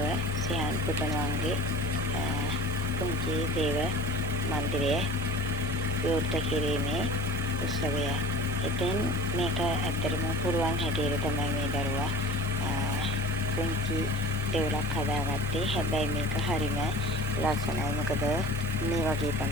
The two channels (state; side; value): normal; both; correlation 0.40